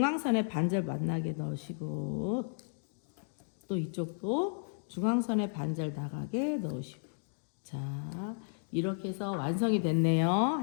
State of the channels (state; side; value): silent; right; digital silence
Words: 반절 만나게 넣으시고 또 이쪽도 중앙선에 반절 나가게 넣으시고 자 이렇게 해서 완성이 됐네요.